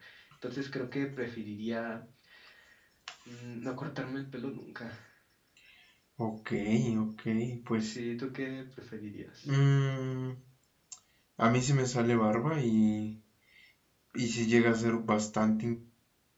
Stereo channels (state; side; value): identical; both; correlation 1.00